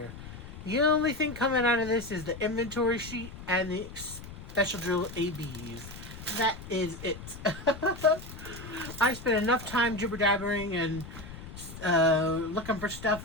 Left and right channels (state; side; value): noise; left; rumble, 13 dB below the sound